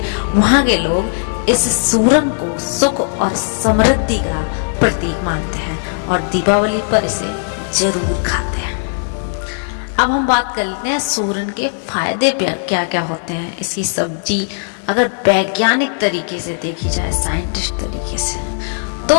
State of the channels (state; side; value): silent; right; 68 dB below the other